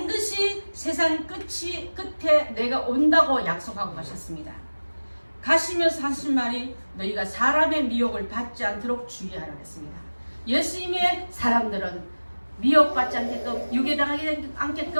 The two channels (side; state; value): both; inverted; correlation -1.00